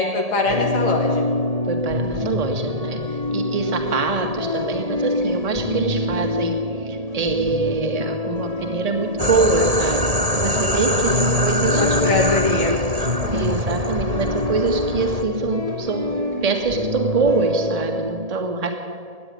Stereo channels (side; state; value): left; late; 1.7 ms